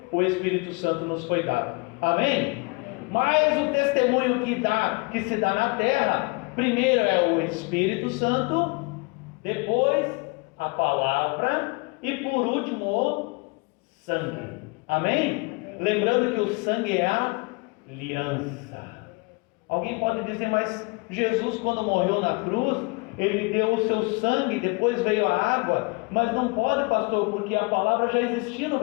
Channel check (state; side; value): quieter; right; 28.9 dB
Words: o Espírito Santo nos foi dado. Amém? Mas o testemunho que se dá na terra, primeiro é o Espírito Santo, depois a palavra e por último o sangue. Amém? Lembrando que o sangue é a aliança. Alguém pode dizer, mas Jesus, quando morreu na cruz, ele deu o seu sangue, depois veio a água. Mas não pode, pastor, porque a palavra já existia no